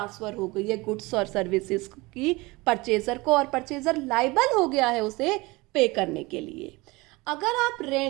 हो गई है गुड्स और सर्विसेज की परचेजर को, और परचेजर लायबल हो गया है उसे पे करने के लिए। अगर आप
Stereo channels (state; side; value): quieter; left; 23.0 dB